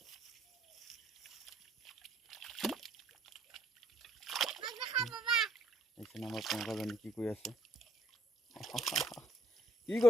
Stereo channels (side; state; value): both; normal; correlation 0.66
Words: এইখিনি আমাৰ প্ৰিয়ংকাজনী কি কৰি আছে? কি